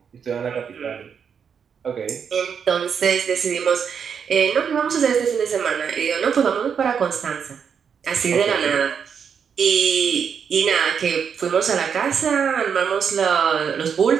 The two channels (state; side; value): quieter; left; 7.0 dB